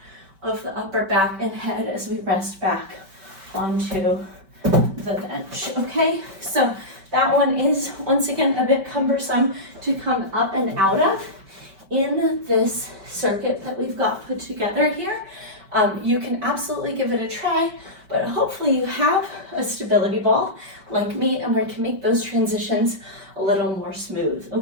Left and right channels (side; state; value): left; late; 5.2 ms